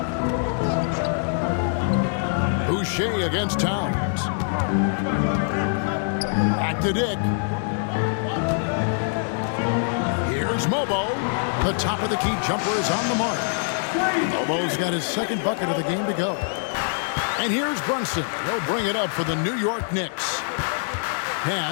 Boucher against Towns. Back to Dick. Here's Mobo. The top of the key jumper is on the mark. Mobo's got his 2nd bucket of the game to go. And here's Brunson. He'll bring it up for the New York Knicks.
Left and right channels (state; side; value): silent; right; 63 dB below the other